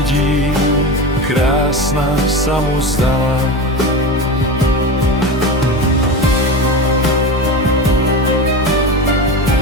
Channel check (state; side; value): normal; both; correlation 0.25